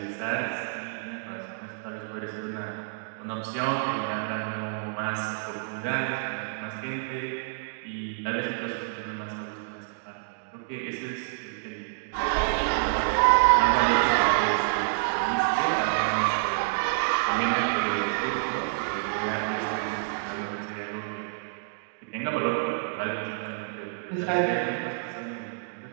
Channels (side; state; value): left; silent; digital silence